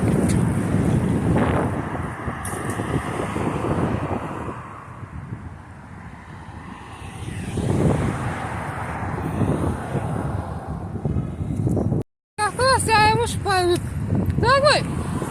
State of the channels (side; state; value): both; identical; correlation 1.00